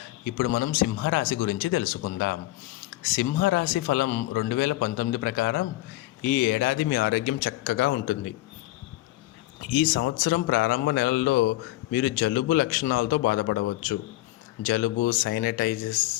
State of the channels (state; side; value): quieter; right; 17.2 dB